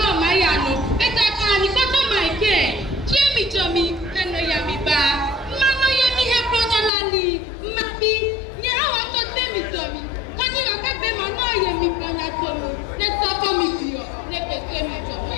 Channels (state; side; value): drops out; right; at 6.9 s